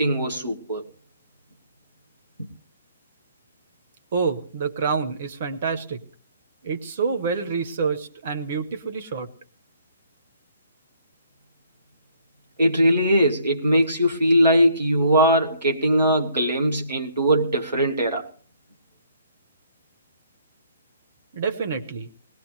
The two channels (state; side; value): inverted; both; correlation -0.64